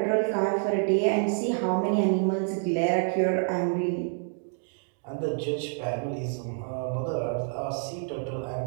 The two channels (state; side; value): silent; left; 59 dB below the other